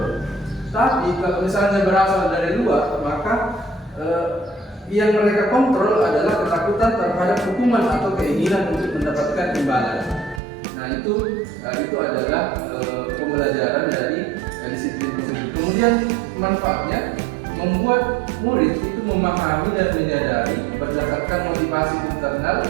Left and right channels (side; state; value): left; drops out; at 10.4 s